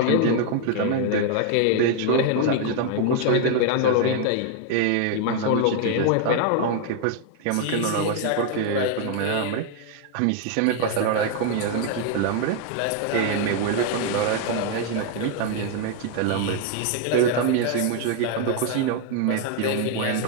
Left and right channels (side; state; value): both; different; correlation 0.00